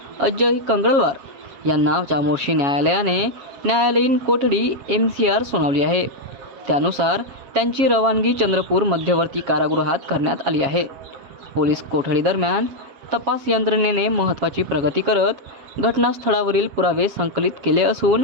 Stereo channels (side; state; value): left; late; 7.3 ms